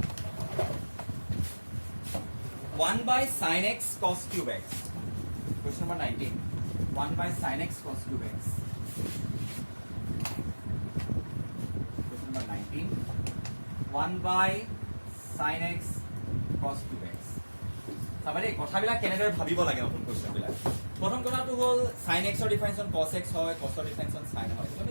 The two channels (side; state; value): both; inverted; correlation -1.00